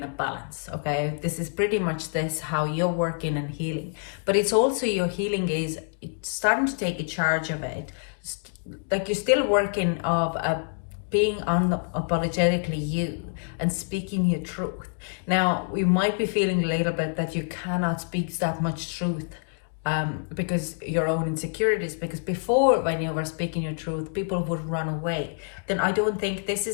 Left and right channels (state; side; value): silent; right; 60 dB below the other